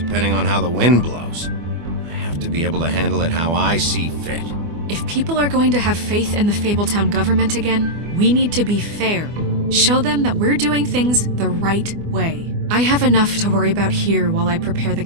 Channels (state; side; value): late; left; 24 ms